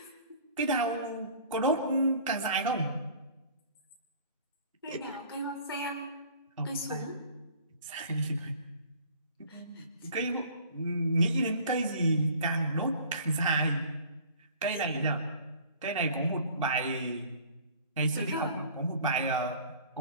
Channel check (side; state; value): both; inverted; correlation -0.49